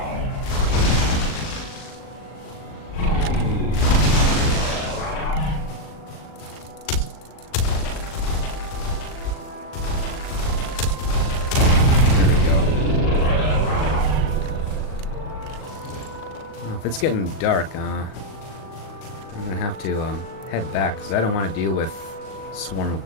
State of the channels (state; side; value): late; right; 39 ms